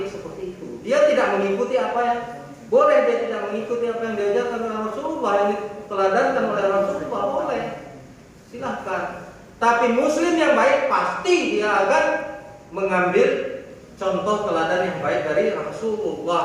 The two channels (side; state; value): both; identical; correlation 1.00